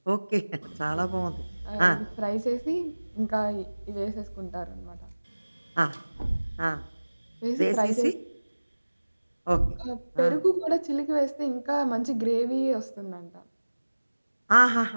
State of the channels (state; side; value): inverted; both; correlation -1.00